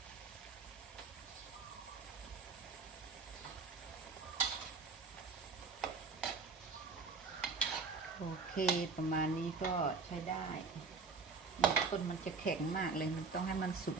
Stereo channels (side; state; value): left; quieter; 4.5 dB